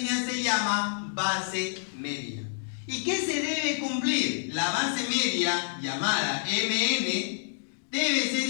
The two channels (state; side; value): silent; right; digital silence